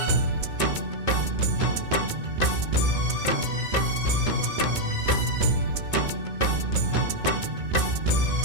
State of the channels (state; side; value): late; left; 2.2 ms